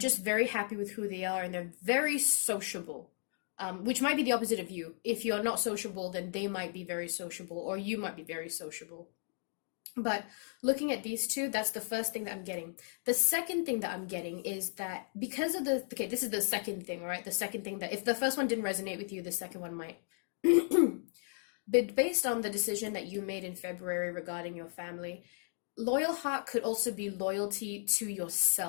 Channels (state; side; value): silent; right; 54 dB below the other